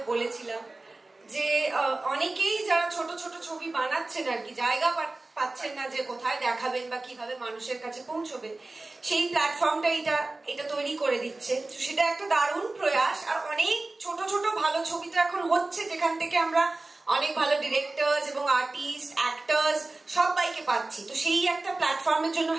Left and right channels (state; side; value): quieter; left; 3.1 dB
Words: বলেছিলাম যে অনেকেই যারা ছোট ছোট ছবি বানাচ্ছেন আর কি, জায়গা পাচ্ছেন না যে কোথায় দেখাবেন বা কিভাবে মানুষের কাছে পৌঁছবে, সেই প্ল্যাটফর্মটা এটা তৈরি করে দিচ্ছে। সেটা একটা দারুণ প্রয়াস। আর অনেক ছোট ছোট ভালো ছবি তো এখন হচ্ছে, যেখান থেকে আমরা অনেক ভালো ডিরেক্টরস এবং আর্টিস্ট, অ্যাক্টরস সবাইকে পাচ্ছি। তো সেই একটা প্ল্যাটফর্মের জন্য